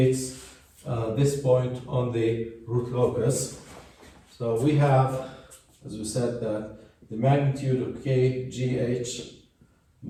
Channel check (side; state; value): both; identical; correlation 1.00